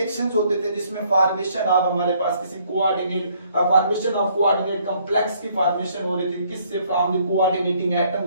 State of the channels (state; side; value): inverted; both; correlation -0.65